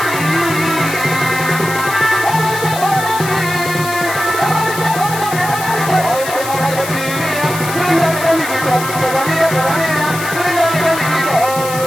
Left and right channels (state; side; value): noise; left; hiss, 9 dB below the sound